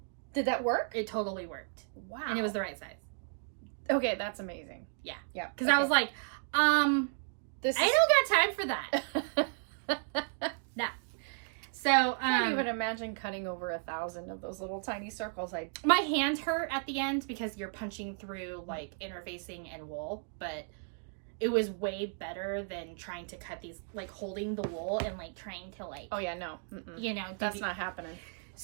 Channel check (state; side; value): silent; left; 55 dB below the other